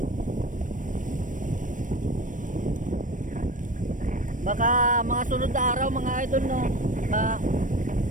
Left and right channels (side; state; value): left; late; 0.38 ms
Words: Baka mga sunod na araw mga idol no,